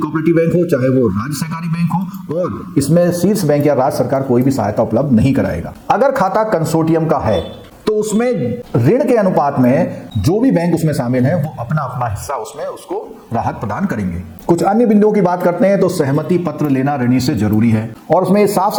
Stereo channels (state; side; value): identical; both; correlation 1.00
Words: कोऑपरेटिव बैंक हो, चाहे वो राज्य सहकारी बैंक हो, और इसमें शीर्ष बैंक या राज्य सरकार कोई भी सहायता उपलब्ध नहीं कराएगा। अगर खाता कंसोर्टियम का है तो उसमें ऋण के अनुपात में जो भी बैंक उसमें शामिल हैं वो अपना अपना हिस्सा उसमें उसको राहत प्रदान करेंगे। कुछ अन्य बिंदुओं की बात करते हैं तो सहमति पत्र लेना ऋणी से जरूरी है, और उसमें साफ